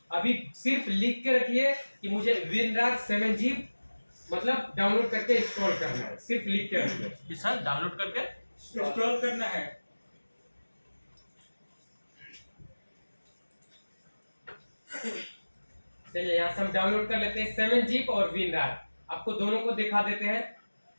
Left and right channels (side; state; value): both; inverted; correlation -1.00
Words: अभी सिर्फ लिख के रखिए कि मुझे विनरार 7G मतलब डाउनलोड करके इंस्टॉल करना है, सिर्फ लिख के रखिए। सर डाउनलोड करके इंस्टॉल करना है। चलिए यहाँ से हम डाउनलोड कर लेते हैं 7G और विनरार, आपको दोनों को दिखा देते हैं।